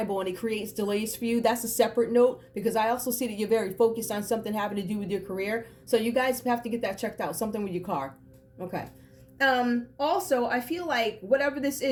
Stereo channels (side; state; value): both; identical; correlation 1.00